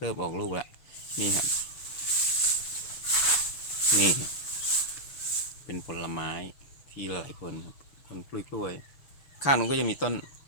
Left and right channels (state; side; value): late; right; 6.9 ms